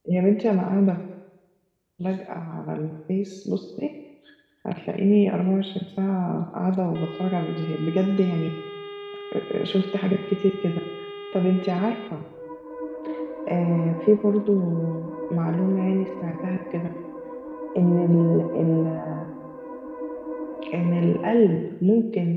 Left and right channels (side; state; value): both; identical; correlation 1.00